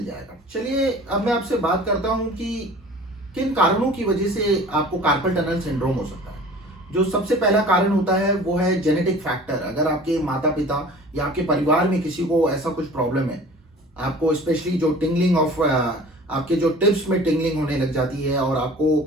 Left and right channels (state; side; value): normal; both; correlation 0.44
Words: जाएगा। चलिए अब मैं आपसे बात करता हूं कि किन कारणों की वजह से आपको कार्पल टनल सिंड्रोम हो सकता है। जो सबसे पहला कारण होता है वो है जेनेटिक फैक्टर। अगर आपके माता पिता या आपके परिवार में किसी को ऐसा कुछ प्रॉब्लम है, आपको स्पेशली जो टिंगलिंग ऑफ आपके जो टिप्स में टिंगलिंग होने लग जाती है और आपको